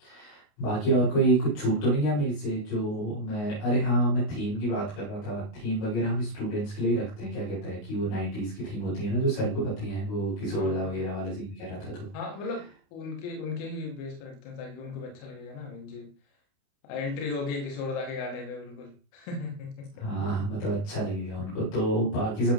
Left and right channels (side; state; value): right; late; 28 ms